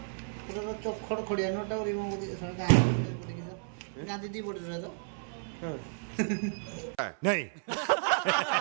पूरा तो चोक खड़ खड़िया नोटा रिमूव कर दियो सर गाय पड़ गई गांधी दी पड़ रहा तो हां नहीं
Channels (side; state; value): left; silent; 56 dB below the other